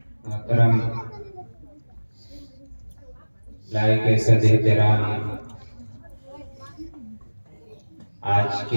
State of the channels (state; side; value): inverted; both; correlation -1.00